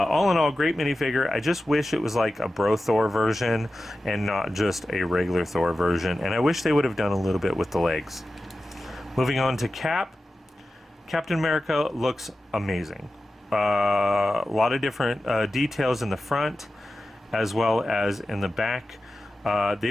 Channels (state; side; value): normal; both; correlation 0.93